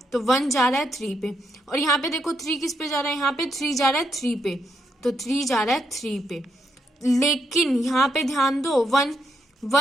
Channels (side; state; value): both; normal; correlation 0.79